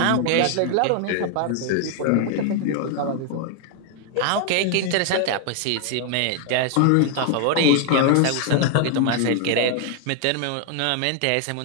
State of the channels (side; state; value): both; different; correlation 0.00